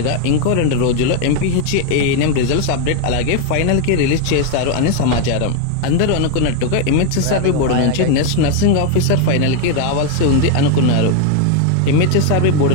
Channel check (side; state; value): both; different; correlation 0.01